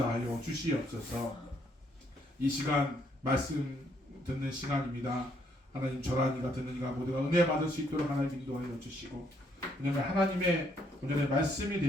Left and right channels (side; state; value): both; normal; correlation 0.70